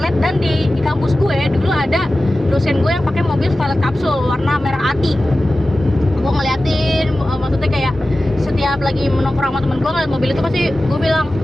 dan di kampus gue dulu ada dosen gue yang pakai mobil Starlet kapsul warna merah ati. Gue ngeliatin, maksudnya kayak setiap lagi menongkrong sama temen gue ngeliat mobil itu pasti gue bilang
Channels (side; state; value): both; normal; correlation 0.95